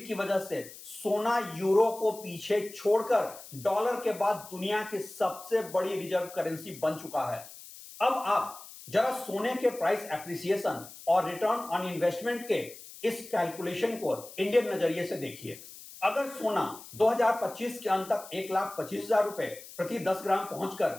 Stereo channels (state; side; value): noise; left; hiss, 16 dB below the sound